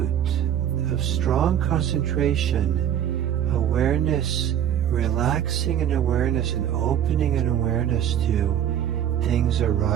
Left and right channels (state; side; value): quieter; left; 10.1 dB